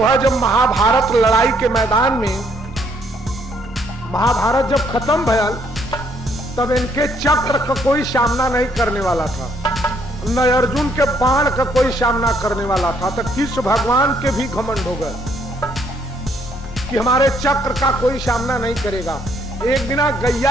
जब महाभारत लड़ाई के मैदान में महाभारत जब खत्म भयल तब इनके चक्र का कोई सामना नहीं करने वाला था, न अर्जुन के बाण का कोई सामना करने वाला था। तो कृष्ण भगवान के भी घमंड हो गए कि हमारे चक्र का कोई सामना नहीं करेगा। एक दिन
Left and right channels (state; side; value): normal; both; correlation 0.68